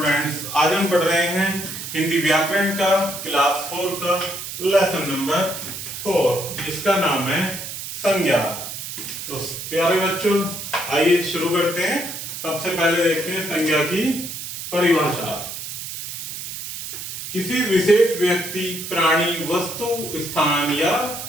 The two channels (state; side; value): noise; right; hiss, 8 dB below the sound